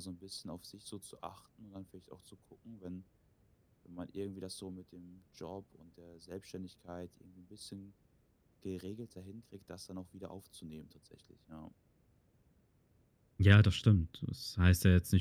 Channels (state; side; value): identical; both; correlation 1.00